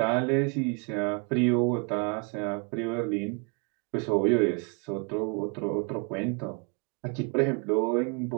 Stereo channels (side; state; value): left; quieter; 35.5 dB